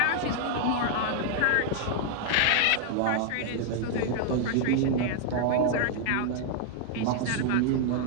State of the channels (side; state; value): both; different; correlation 0.00